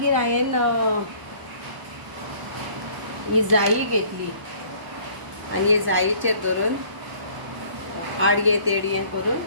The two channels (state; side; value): late; left; 1.0 ms